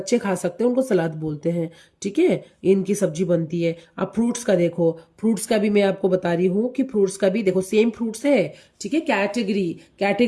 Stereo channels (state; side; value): identical; both; correlation 1.00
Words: खा सकते हैं उनको सलाद बोलते हैं, ठीक है। इनकी सब्जी बनती है। अब फ्रूट्स का देखो, फ्रूट्स का भी मैं आपको बता रही हूँ कि फ्रूट्स का भी देखो सेम फ्रूट्स है, ठीक है।